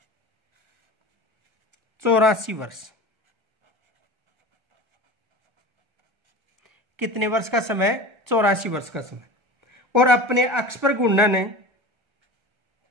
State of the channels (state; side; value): late; left; 1.3 ms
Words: 84 वर्ष। कितने वर्ष का समय? 84 वर्ष का समय। और अपने अक्ष पर घूर्णन है